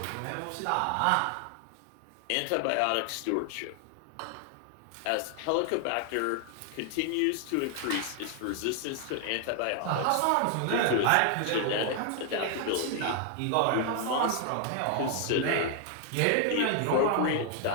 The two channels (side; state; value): both; different; correlation 0.00